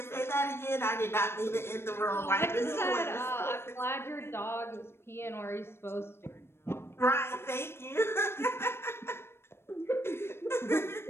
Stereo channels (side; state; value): right; late; 0.12 ms